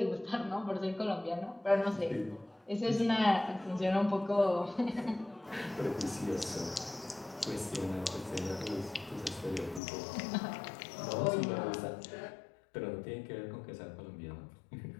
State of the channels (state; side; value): drops out; right; at 9.8 s